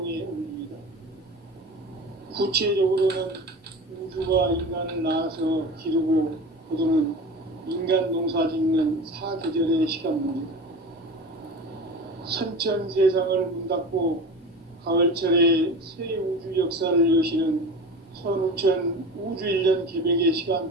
원리이다. 구체적으로는 우주가 인간을 낳아서 기르고 거두는 인간 농사 짓는 사계절의 시간문이다. 선천 세상을 문 닫고 가을철에 새 우주 역사를 여시는 선우천 우주 1년 개백의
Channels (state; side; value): normal; both; correlation 0.32